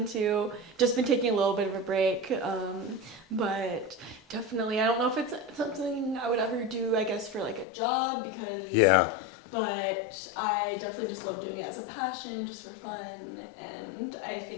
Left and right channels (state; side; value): drops out; right; at 7.7 s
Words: Just been taking a little bit of a break, but definitely, I don't know if it's something I would ever do, I guess, for like a job because... Yeah. But I definitely just love doing it as a passion, just for fun, and I